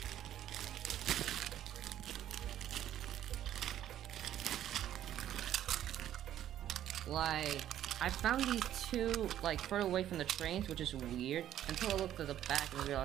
Like, I found these two, like, further away from the trains, which is weird, until I looked at the back and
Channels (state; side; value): quieter; left; 11.6 dB